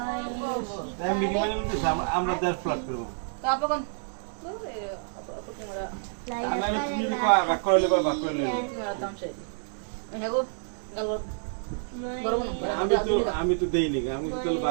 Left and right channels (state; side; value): silent; left; digital silence